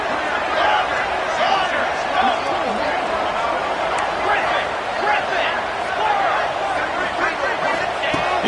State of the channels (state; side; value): identical; both; correlation 1.00